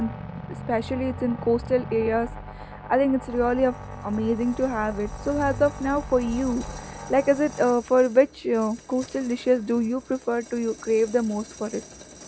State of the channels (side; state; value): both; identical; correlation 1.00